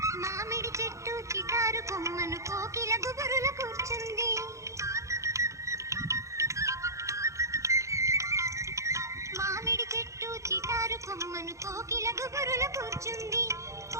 మామిడి చెట్టు చిటారు కొమ్మను కోకిల గుబురుల కూర్చుంది. మామిడి చెట్టు చిటారు కొమ్మను కోకిల గుబురుల కూర్చుంది.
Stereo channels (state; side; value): late; left; 0.15 ms